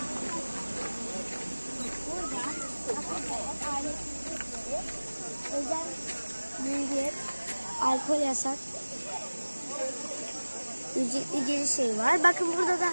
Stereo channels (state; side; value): inverted; both; correlation -1.00